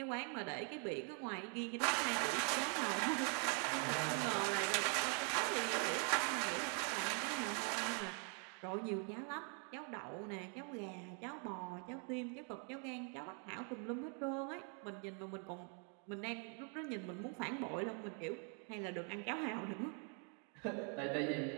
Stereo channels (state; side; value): quieter; left; 39.9 dB